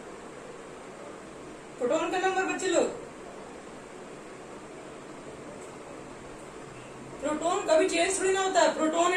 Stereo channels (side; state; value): both; identical; correlation 1.00